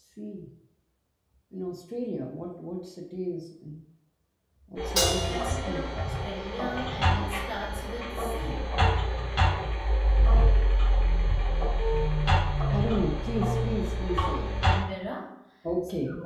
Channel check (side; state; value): both; identical; correlation 1.00